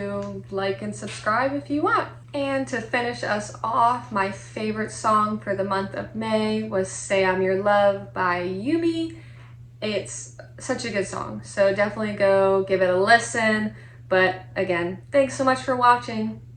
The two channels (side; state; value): both; identical; correlation 1.00